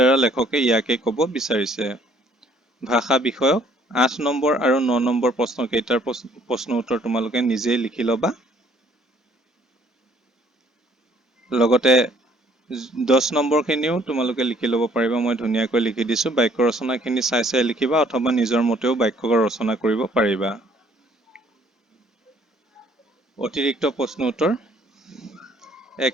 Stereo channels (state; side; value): normal; both; correlation 0.62